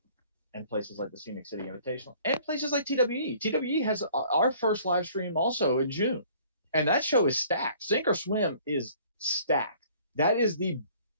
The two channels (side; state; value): both; inverted; correlation -0.54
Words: and places like the Scenic City Invitational and places like TWE. TWE has our first live stream also in June. And that show is stacked. Sink or Swim is stacked. That is